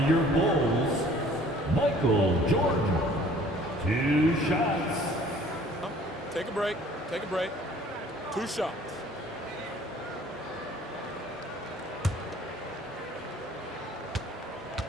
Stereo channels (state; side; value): normal; both; correlation 0.53